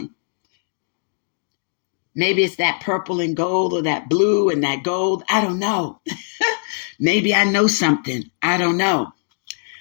Maybe it's that purple and gold or that blue and that gold. I don't know. Maybe I know something. I don't know.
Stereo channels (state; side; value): silent; right; digital silence